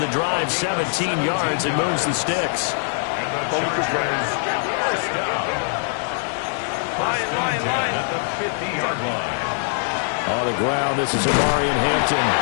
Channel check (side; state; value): right; silent; 64 dB below the other